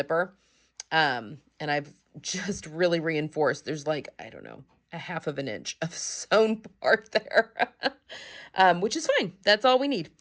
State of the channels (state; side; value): identical; both; correlation 1.00